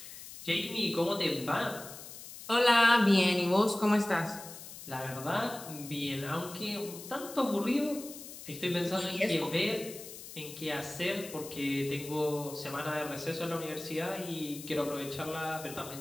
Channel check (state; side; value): noise; left; hiss, 13 dB below the sound